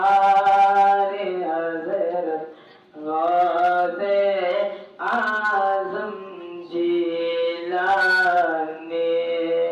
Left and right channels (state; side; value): identical; both; correlation 1.00